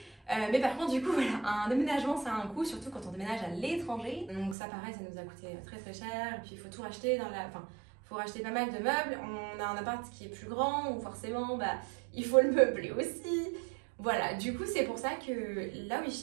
Mais par contre du coup voilà, un déménagement ça a un coût, surtout quand on déménage à l'étranger. Donc ça pareil, ça nous a coûté très très cher. Et puis il faut tout racheter il faut racheter pas mal de meubles. On a un appart qui est plus grand, donc forcément il faut le meubler aussi. Voilà, du coup c'est pour ça que la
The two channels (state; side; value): drops out; left; at 4.5 s